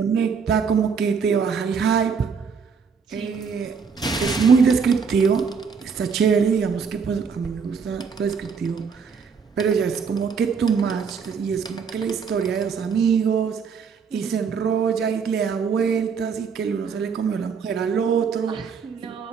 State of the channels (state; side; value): quieter; left; 6.0 dB